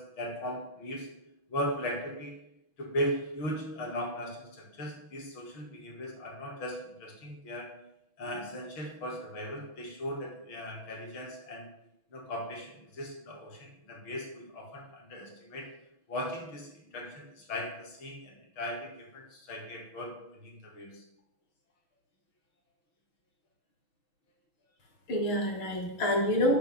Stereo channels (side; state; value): right; late; 6.2 ms